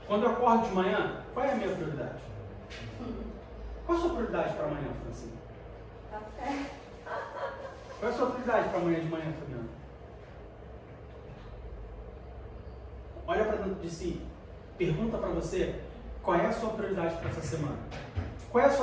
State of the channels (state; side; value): identical; both; correlation 1.00